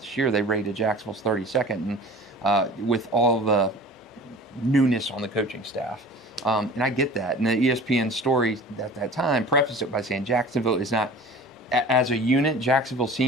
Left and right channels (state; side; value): normal; both; correlation 0.41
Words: year. They rated Jacksonville's 32nd, and with all the newness on the coaching staff. And I get that. And the ESPN story at that time prefaced it by saying Jacksonville is not, as a unit, Jacksonville's